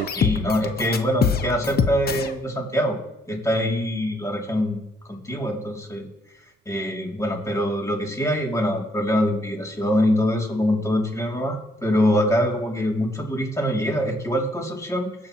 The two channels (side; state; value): both; normal; correlation 0.69